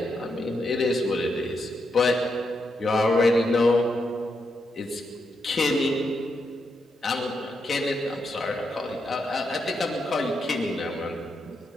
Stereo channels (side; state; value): both; normal; correlation 0.82